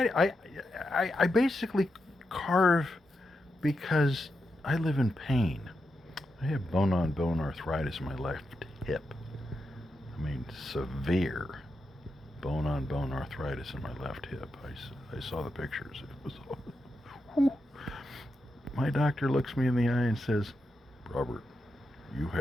basically carve because I live in pain. I have bone-on-bone arthritis in my left hip. I mean, severe bone-on-bone arthritis in my left hip. I saw the pictures. It was, whew. My doctor looks me in the eye and says, Robert, you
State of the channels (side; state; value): both; normal; correlation 0.86